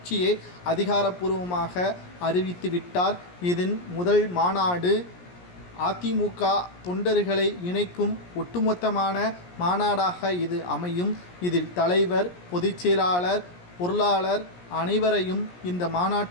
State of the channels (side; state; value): right; late; 17 ms